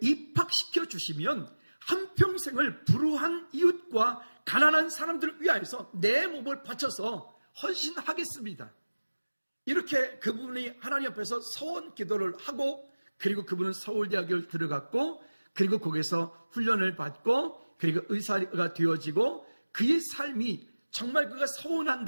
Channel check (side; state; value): both; inverted; correlation -1.00